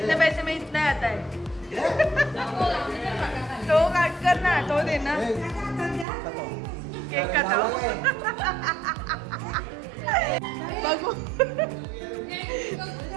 पैसे में इतना आता है. तो काट कर ना, तो दे ना. केक काटाओ. बघू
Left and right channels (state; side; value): drops out; left; at 6.1 s